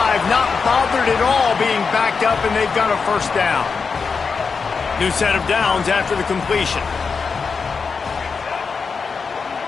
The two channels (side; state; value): right; quieter; 5.2 dB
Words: not bothered at all being backed up, and they've got a first down. New set of downs after the completion.